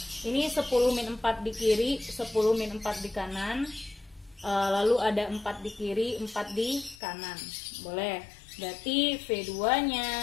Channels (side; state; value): right; drops out; at 7.0 s